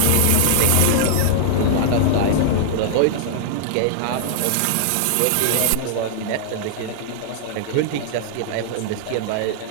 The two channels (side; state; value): both; different; correlation -0.01